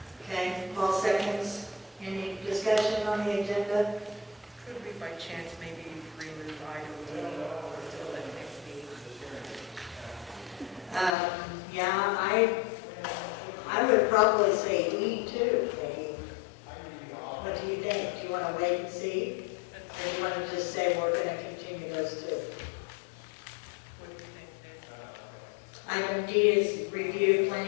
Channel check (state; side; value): drops out; right; at 11.2 s